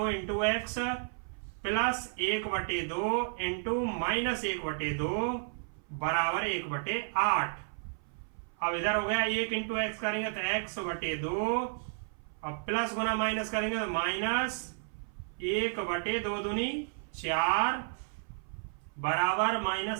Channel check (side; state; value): left; silent; 56 dB below the other